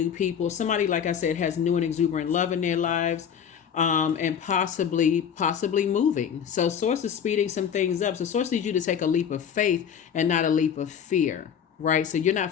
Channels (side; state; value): right; quieter; 8.0 dB